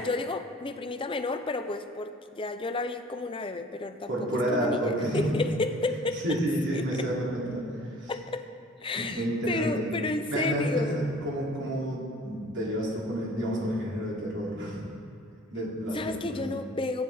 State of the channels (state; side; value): normal; both; correlation 0.50